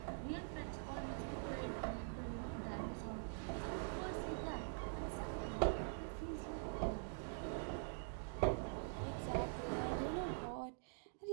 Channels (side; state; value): left; silent; digital silence